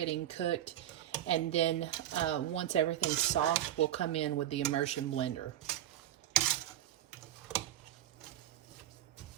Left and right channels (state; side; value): quieter; left; 12.3 dB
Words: cooked. And then once everything's soft, we'll come in with the immersion blender.